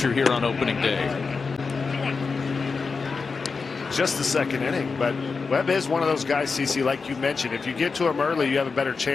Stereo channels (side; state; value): right; quieter; 4.7 dB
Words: here on opening day. Just the second inning, but Webb is one of those guys, CC, like you mentioned. If you get to him early, you have a better